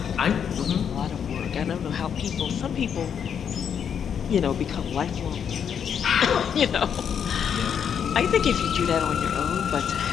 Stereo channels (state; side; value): quieter; right; 7.8 dB